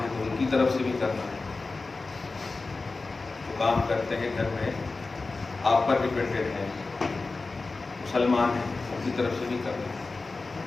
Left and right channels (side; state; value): right; quieter; 3.7 dB